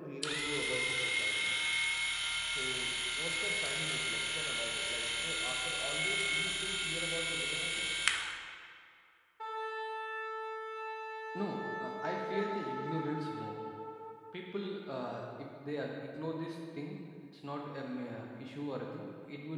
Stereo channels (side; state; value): both; identical; correlation 1.00